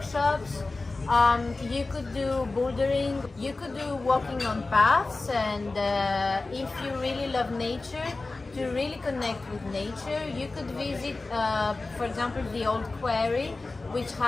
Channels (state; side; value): quieter; right; 3.4 dB